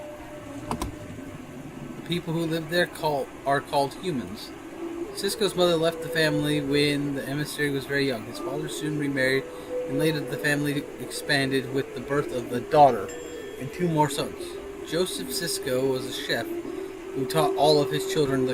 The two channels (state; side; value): identical; both; correlation 1.00